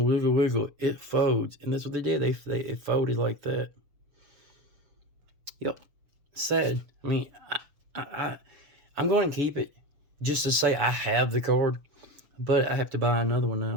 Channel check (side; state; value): left; late; 6.8 ms